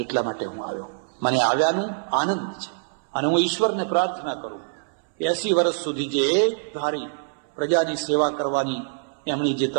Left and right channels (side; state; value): left; silent; 62 dB below the other